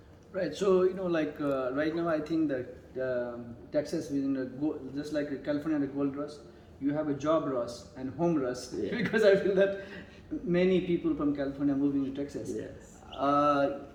Right. So like right now, I think that Texas is just like California, the gold rush. You have a job rush and home rush, because I feel that many people from California are moving to Texas. Yes.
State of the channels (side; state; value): both; identical; correlation 1.00